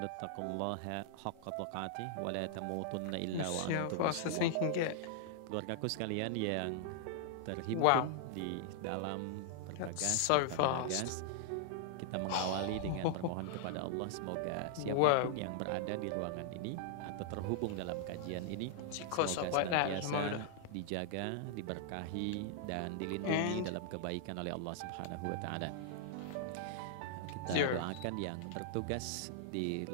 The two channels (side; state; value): both; different; correlation -0.01